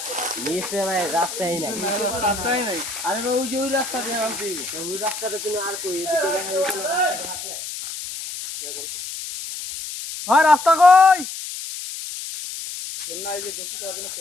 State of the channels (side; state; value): left; noise; hiss, 8 dB below the sound